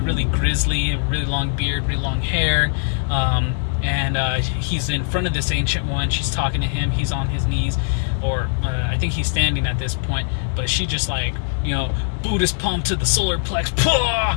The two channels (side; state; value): right; silent; digital silence